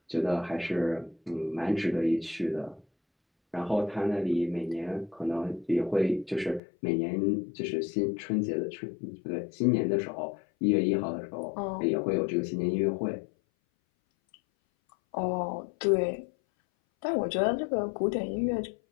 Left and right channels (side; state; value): right; drops out; at 6.6 s